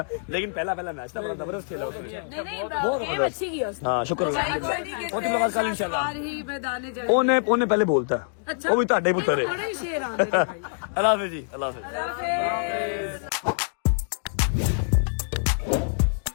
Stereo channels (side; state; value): right; silent; digital silence